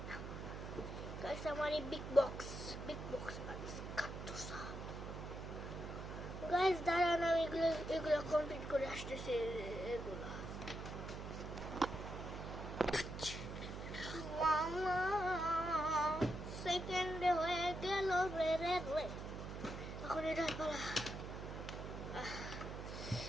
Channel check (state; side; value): noise; right; hum, 7 dB below the sound